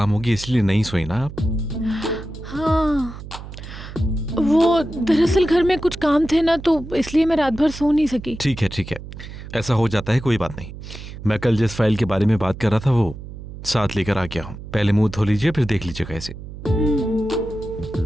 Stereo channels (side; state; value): right; noise; hum, 12 dB below the sound